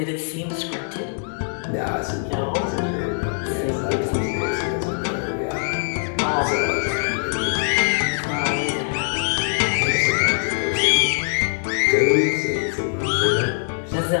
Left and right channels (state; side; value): silent; right; 63 dB below the other